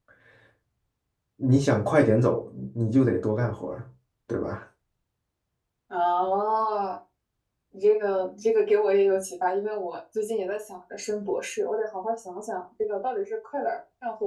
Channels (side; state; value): both; identical; correlation 1.00